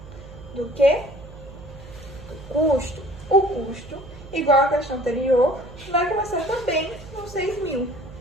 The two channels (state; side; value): noise; right; hum, 17 dB below the sound